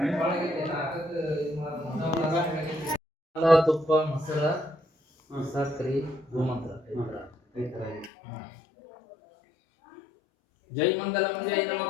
ತುಪ್ಪ ಮೊಸರ ಸಕ್ರಿ ಗೋಮಂತ್ರ ಜೈ ಮಂಗಲಂ ಜೈ ನಮಃ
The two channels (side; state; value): right; drops out; at 8.1 s